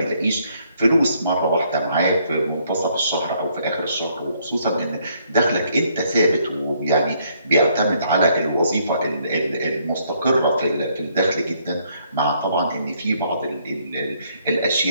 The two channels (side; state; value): both; inverted; correlation -0.69